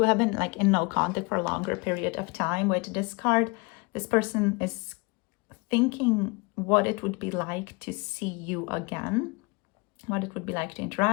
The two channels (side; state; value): right; quieter; 28.1 dB